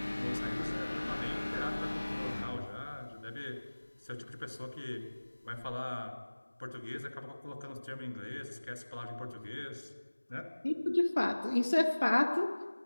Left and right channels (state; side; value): inverted; both; correlation -1.00